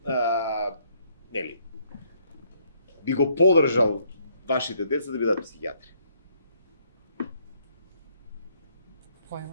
Нели? би го поддржал вашите деца да бидат психијатри?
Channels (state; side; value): inverted; both; correlation -0.69